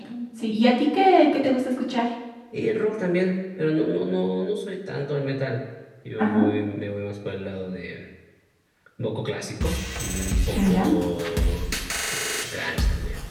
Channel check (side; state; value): both; identical; correlation 1.00